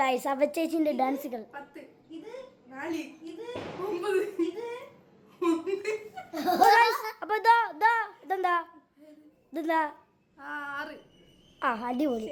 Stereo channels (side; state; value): both; identical; correlation 1.00